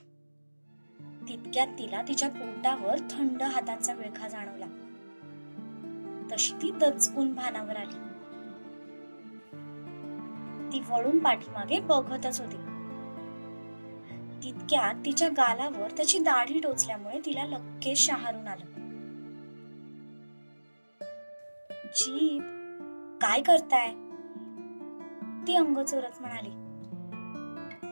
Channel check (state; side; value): inverted; both; correlation -1.00